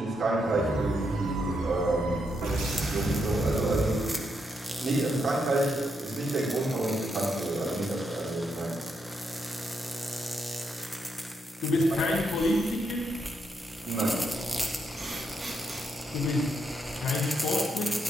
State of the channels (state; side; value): normal; both; correlation 0.80